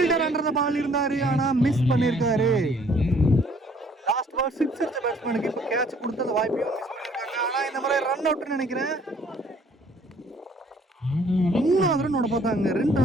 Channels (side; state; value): both; normal; correlation 0.59